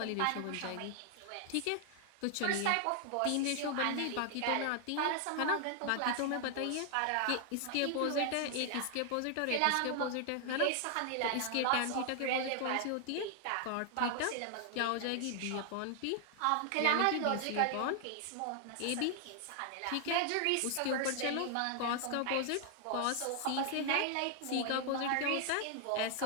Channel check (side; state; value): both; different; correlation 0.00